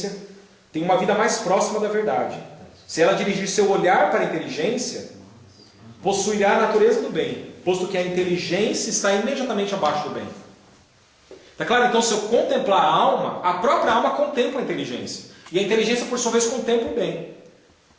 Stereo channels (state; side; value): identical; both; correlation 1.00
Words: tem uma vida mais próxima da verdade. Se ela dirigir seu olhar para a inteligência, possuirá a natureza do bem, posto que a inteligência está imediatamente abaixo do bem. Tá claro? Então, se eu contemplar a alma, a própria alma contempla a inteligência. E a inteligência, por sua vez, contempla o bem.